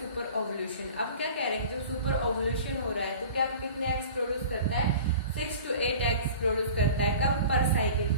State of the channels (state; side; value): inverted; both; correlation -0.41